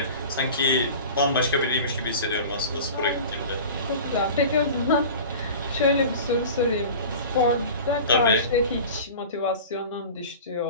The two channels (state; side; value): inverted; both; correlation -0.37